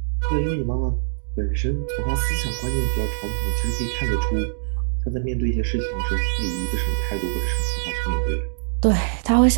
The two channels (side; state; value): left; silent; digital silence